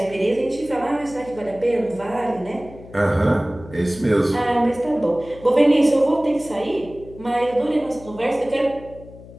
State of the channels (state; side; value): noise; left; hum, 18 dB below the sound